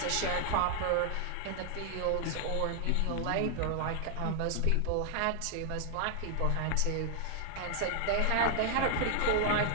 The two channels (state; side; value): different; both; correlation 0.00